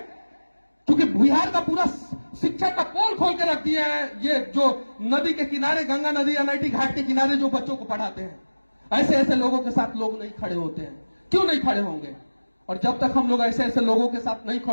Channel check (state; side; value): inverted; both; correlation -1.00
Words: क्योंकि बिहार का पूरा शिक्षा का पोल खोल के रख दिया है ये जो नदी के किनारे, गंगा नदी एनआईटी घाट के किनारे जो बच्चों को पढ़ाते हैं। ऐसे ऐसे लोगों के साथ लोग नहीं खड़े होते हैं। क्यों नहीं खड़े होंगे? और जब तक हम लोग ऐसे ऐसे लोगों के साथ नहीं